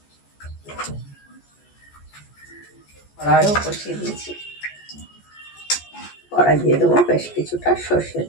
কড়াইও কষিয়ে দিয়েছি, কড়াই দিয়ে দেবো বেশ কিছুটা সর্ষের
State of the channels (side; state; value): right; late; 14 ms